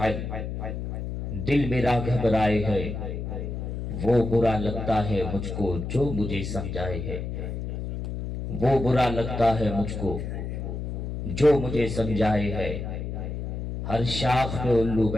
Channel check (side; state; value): left; noise; hum, 5 dB below the sound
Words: دل میرا گھبرائے ہے وہ برا لگتا ہے مجھ کو جو مجھے سمجھائے ہے وہ برا لگتا ہے مجھ کو جو مجھے سمجھائے ہے ہر شاخ پہ الو